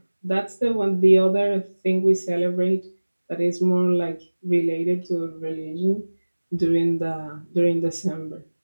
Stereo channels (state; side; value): inverted; both; correlation -1.00